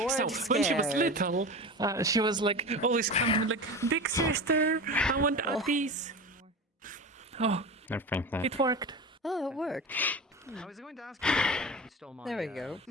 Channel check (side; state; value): both; normal; correlation 0.29